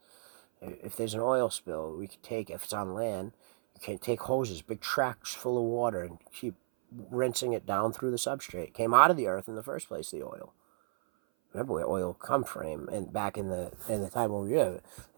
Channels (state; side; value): silent; left; 56 dB below the other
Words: If there's an oil spill, we could take, if it's on land, you can take hoses, big tracks full of water, and keep rinsing it down through the substrate. It came out of the earth in the first place, the oil. Remember where oil come from? And back in the time when we were,